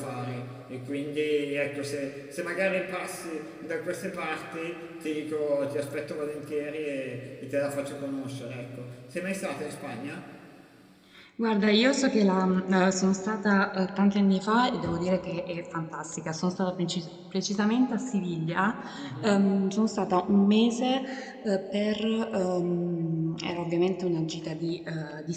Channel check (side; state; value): both; identical; correlation 1.00